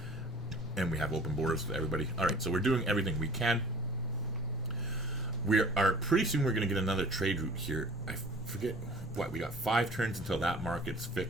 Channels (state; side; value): normal; both; correlation 0.48